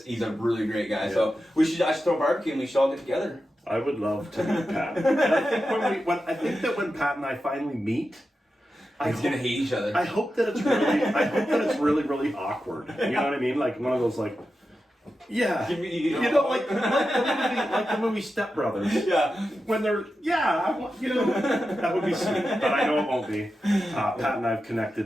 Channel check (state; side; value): normal; both; correlation 0.90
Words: a really great guy. Yeah. So I should throw a barbecue, and we should all get together. I would love to meet Pat. And I think that when Pat and I finally meet, He's gonna hate each other. I hope that it's really, really awkward. You know what I mean? Like one of those like. Yeah, like the movie Step Brothers. Yeah, when they're that would be sweet, but I know it won't be. Pat and I have